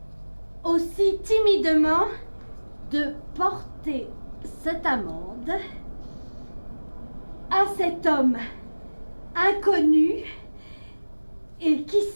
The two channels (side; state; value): both; inverted; correlation -1.00